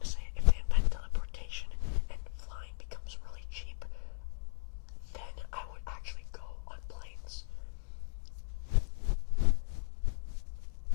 say if they invent teleportation and flying becomes really cheap, then I would actually go on planes.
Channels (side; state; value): right; silent; digital silence